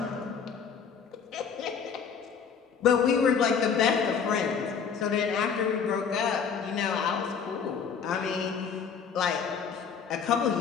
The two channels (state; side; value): quieter; right; 6.6 dB